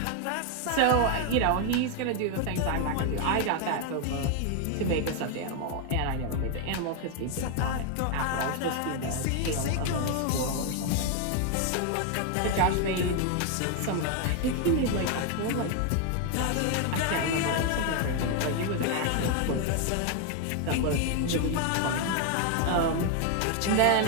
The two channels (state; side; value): different; both; correlation 0.01